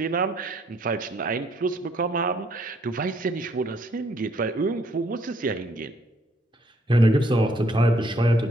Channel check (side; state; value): both; normal; correlation 0.67